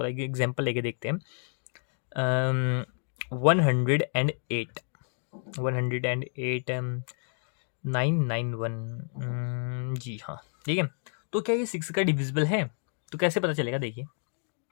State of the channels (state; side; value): silent; right; 58 dB below the other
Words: एग्जाम्पल लेके देखते हैं। 108 991, जी हाँ, ठीक है। तो क्या ये 6 का डिविजिबल है? तो कैसे पता चलेगा? देखिए,